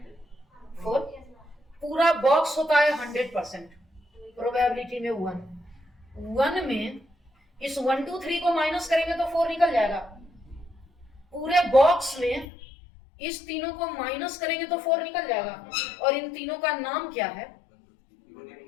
4 पूरा बॉक्स होता है 100%, प्रोबेबिलिटी में 1 में इस 1 2 3 को माइनस करेंगे तो 4 निकल जाएगा। पूरे बॉक्स में इस तीनों को माइनस करेंगे तो 4 निकल जाएगा। और इन तीनों का नाम क्या है?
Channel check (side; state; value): right; drops out; at 12.5 s